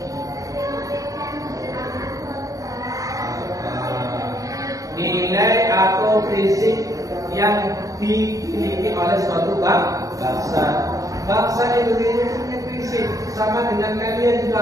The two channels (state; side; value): late; left; 0.17 ms